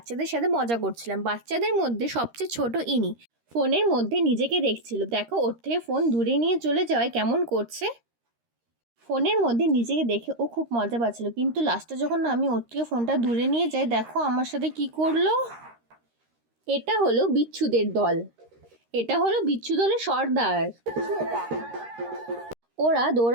সাথে মজা করছিলাম। বাচ্চাদের মধ্যে সবচেয়ে ছোট ইনি ফোনের মধ্যে নিজেকে দেখছিল। দেখো ওর থেকে ফোন দূরে নিয়ে চলে যাওয়ায় কেমন করছে। ফোনের মধ্যে নিজেকে দেখে ও খুব মজা পাচ্ছিল, কিন্তু লাস্টে যখন আমি ওর থেকে ফোনটা দূরে নিয়ে যাই, দেখো আমার সাথে কি করলো। এটা হলো বিচ্ছুদের দল। এটা হলো বিচ্ছু দলের সর্দার। ওরা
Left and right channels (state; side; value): late; left; 13 ms